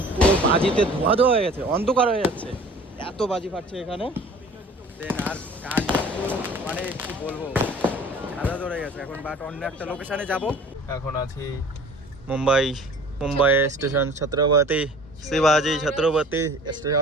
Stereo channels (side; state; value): both; normal; correlation 0.47